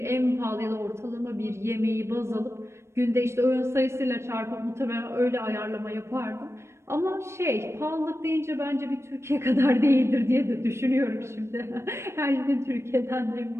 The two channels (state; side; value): late; left; 0.13 ms